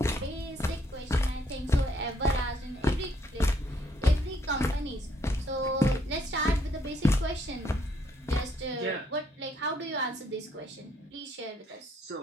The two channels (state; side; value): normal; both; correlation 0.69